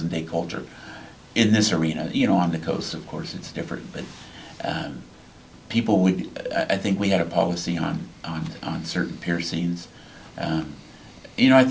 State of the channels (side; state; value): both; identical; correlation 1.00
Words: day culture in this arena. On the coast, of course, it's different, but people would, I think we had a policy on certain piercings. I